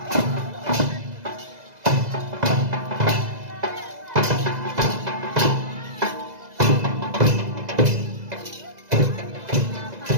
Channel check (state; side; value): late; left; 2.0 ms